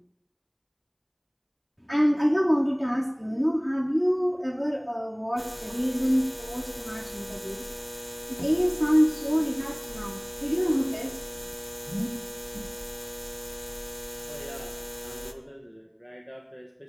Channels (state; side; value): identical; both; correlation 1.00